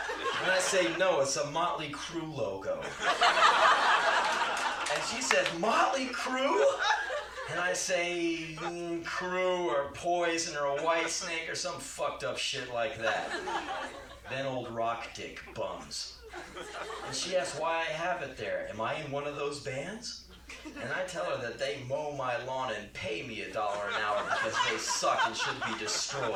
And I say, "No, it's a Motley Crue logo." And she said, "Motley Crue?" And I say, Crew or Poison or a White Snake or some fucked up shit like that. Then old Rock Dick bums. And she asks why I have it there. Am I in one of those bands? And I tell her that they mow my lawn and pay me $1 an hour because they suck and should be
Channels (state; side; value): identical; both; correlation 1.00